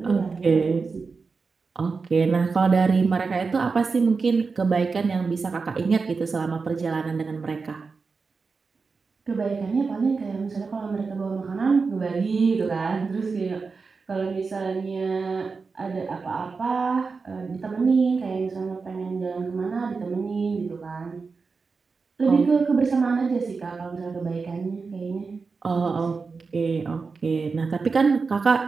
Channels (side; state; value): left; quieter; 4.6 dB